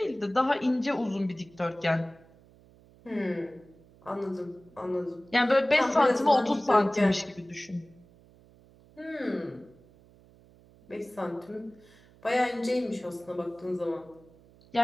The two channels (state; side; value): noise; right; hum, 26 dB below the sound